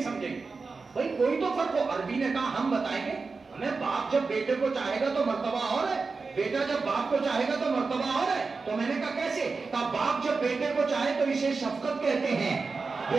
سمجھیں گے. بھائی کوئی تو فرق ہو. عربی نے کہا ہم بتائیں گے, ہمیں باپ جب بیٹے کو چاہے گا تو مرتبہ اور ہے, بیٹا جب باپ کو چاہے گا تو مرتبہ اور ہے. تو میں نے کہا کیسے؟ کہا باپ جب بیٹے کو چاہے تو اسے شفقت کہتے ہیں,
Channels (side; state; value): left; quieter; 4.3 dB